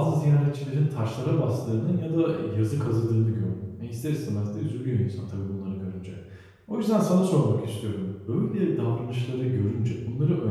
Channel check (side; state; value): both; identical; correlation 1.00